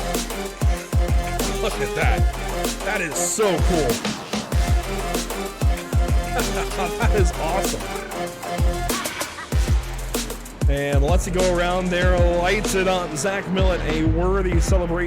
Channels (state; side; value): identical; both; correlation 1.00